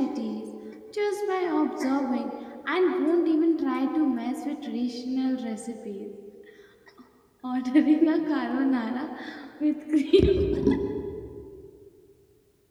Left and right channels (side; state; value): both; identical; correlation 1.00